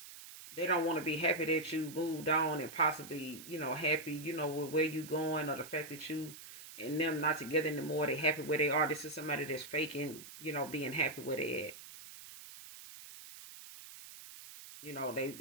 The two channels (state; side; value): noise; right; hiss, 15 dB below the sound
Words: they don't want to be happy that you moved on and possibly, happy, with where you going or the fact that you and them not together anymore. They happy where they are. This is somebody that's faking, being happy where they at.